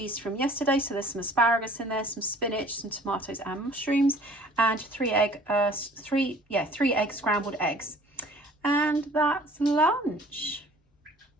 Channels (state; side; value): normal; both; correlation 0.51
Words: from yesterday. So there's some asparagus in there, some spinach, some tomatoes and mushrooms, and 3 egg scrambled eggs. And that's lunch.